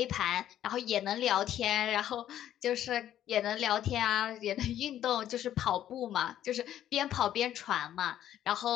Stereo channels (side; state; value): right; quieter; 11.5 dB